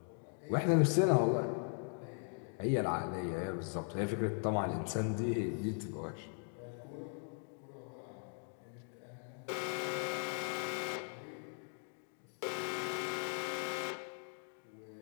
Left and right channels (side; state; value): right; silent; 52 dB below the other